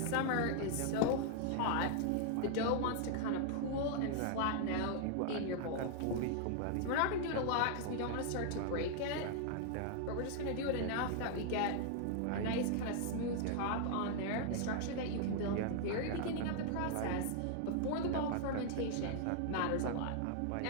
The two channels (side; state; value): both; different; correlation 0.00